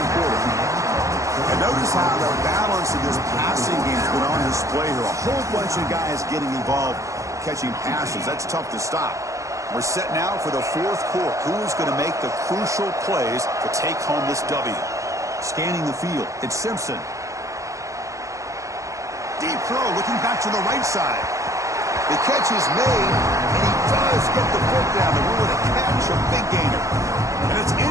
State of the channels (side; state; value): left; late; 0.15 ms